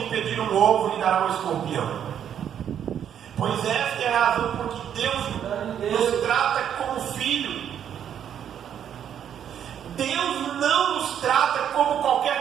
pedir um ovo, lhe dará um escorpião? Pois esta é a razão por que Deus nos trata como filho. Deus não nos trata como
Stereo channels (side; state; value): left; quieter; 9.2 dB